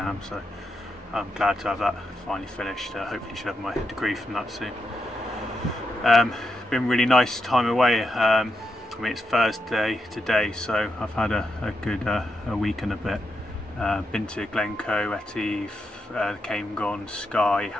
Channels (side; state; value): both; normal; correlation 0.85